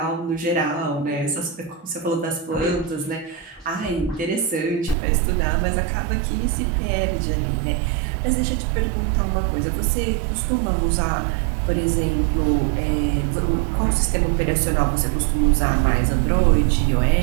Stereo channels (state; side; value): drops out; left; at 5.0 s